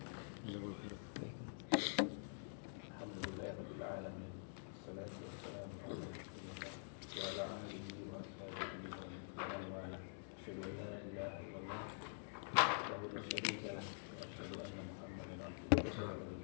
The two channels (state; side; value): silent; right; digital silence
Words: Jazakallahu khairan. Alhamdulillahirabbil alamin. Wassalatu wassalamu ala rasulillah wa ala alihi wa ashabihi wa man wala. Asyhadu an la ilaha illallah wahdahu la syarika lah wa asyhadu anna Muhammadan abduhu